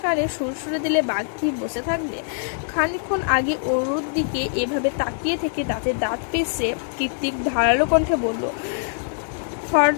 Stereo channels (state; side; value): silent; right; digital silence